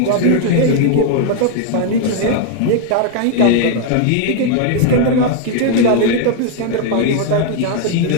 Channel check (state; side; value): different; both; correlation 0.00